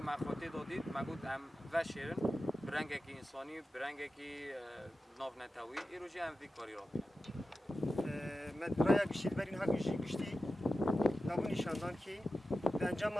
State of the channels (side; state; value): both; normal; correlation 0.93